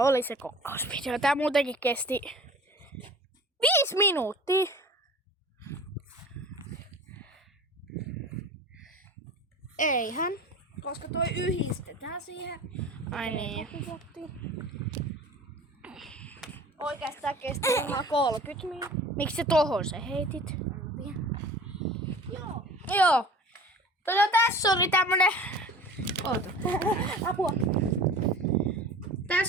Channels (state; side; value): normal; both; correlation 0.41